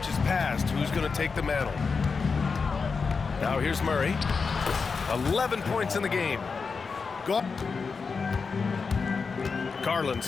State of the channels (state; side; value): quieter; right; 5.0 dB